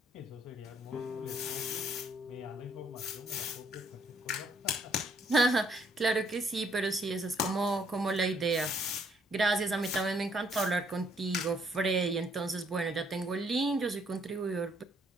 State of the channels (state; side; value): normal; both; correlation 0.68